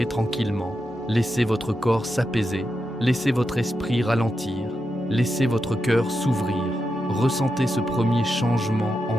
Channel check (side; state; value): both; normal; correlation 0.87